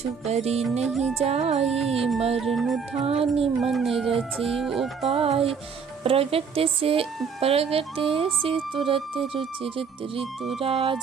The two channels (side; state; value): left; quieter; 6.1 dB